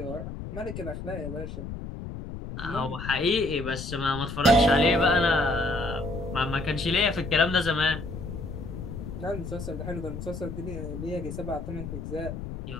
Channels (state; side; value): noise; left; rumble, 8 dB below the sound